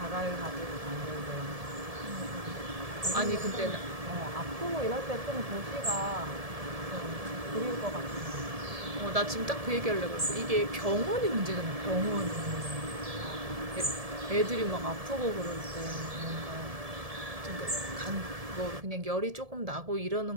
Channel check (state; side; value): late; left; 1.7 ms